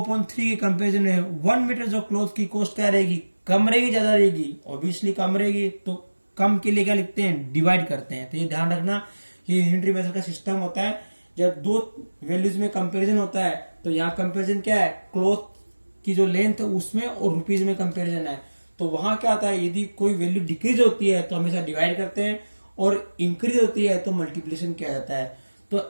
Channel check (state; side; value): inverted; both; correlation -1.00